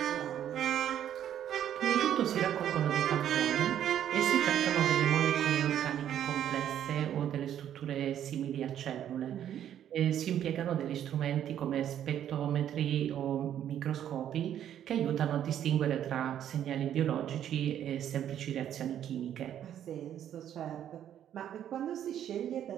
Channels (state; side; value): quieter; left; 10.4 dB